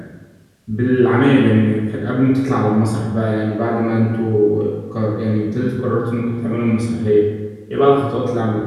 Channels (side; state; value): both; identical; correlation 1.00